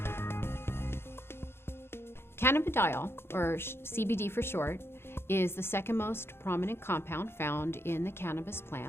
Cannabidiol, or CBD for short, is the second most prominent compound found in the cannabis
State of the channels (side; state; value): right; late; 0.12 ms